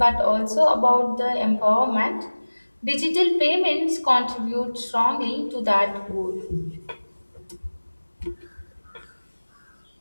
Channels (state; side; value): inverted; both; correlation -1.00